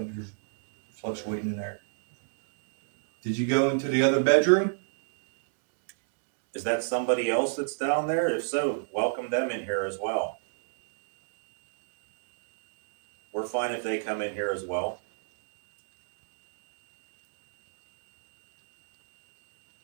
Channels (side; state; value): left; silent; digital silence